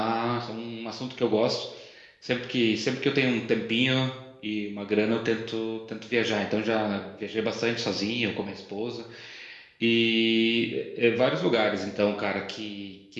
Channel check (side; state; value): both; identical; correlation 1.00